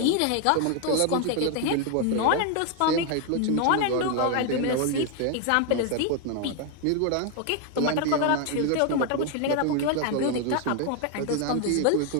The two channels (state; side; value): different; both; correlation 0.01